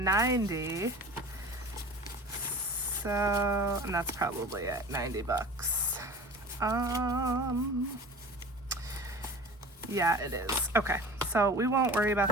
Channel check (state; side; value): normal; both; correlation 0.38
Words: So, and that's probably at 90 bucks. Yeah, it is. Okay, so we won't worry